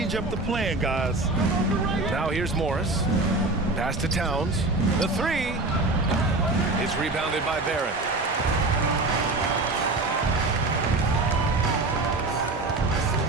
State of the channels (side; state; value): left; quieter; 3.1 dB